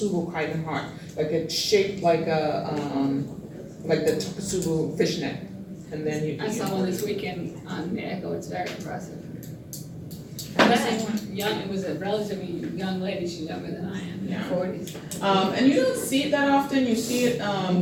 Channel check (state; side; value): identical; both; correlation 1.00